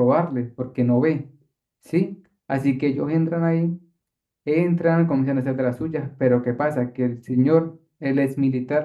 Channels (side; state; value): both; identical; correlation 1.00